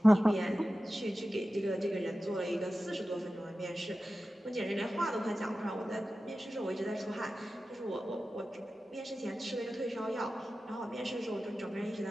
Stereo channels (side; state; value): both; normal; correlation 0.94